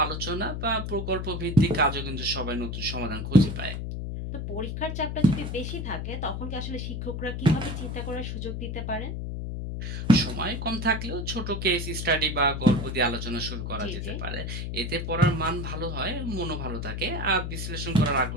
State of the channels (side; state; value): left; noise; hum, 4 dB below the sound